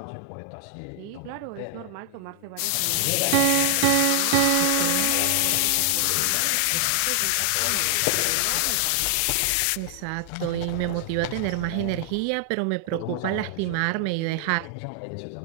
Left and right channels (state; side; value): different; both; correlation 0.00